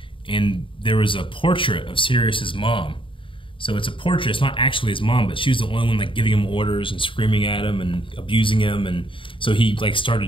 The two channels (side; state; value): right; late; 0.25 ms